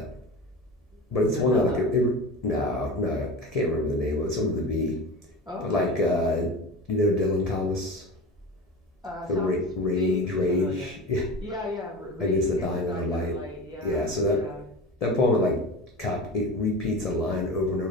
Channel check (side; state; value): both; normal; correlation 0.30